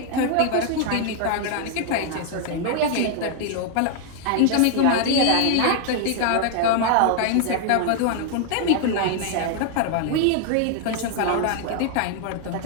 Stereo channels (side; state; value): both; different; correlation 0.00